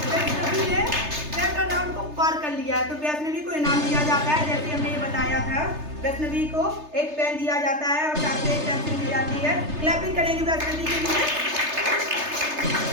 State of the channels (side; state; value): left; late; 3.3 ms